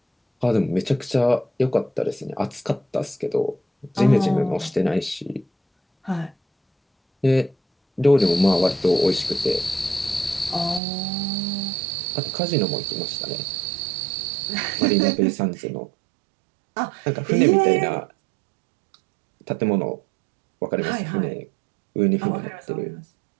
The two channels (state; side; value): drops out; left; at 10.8 s